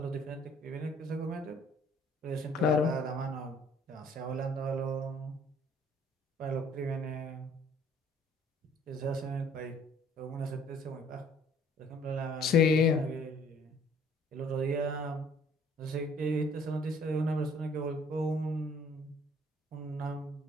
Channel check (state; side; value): normal; both; correlation 0.58